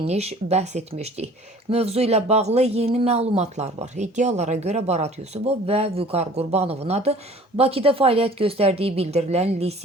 bəhs etmişdik. Mövzu ilə bağlı yeni məlumatlar var. İddialara görə Barat Yusubov və Vüqar Qurbanovun adı Bakıda fəaliyyət göstərdiyi bildirilən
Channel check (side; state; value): both; normal; correlation 0.49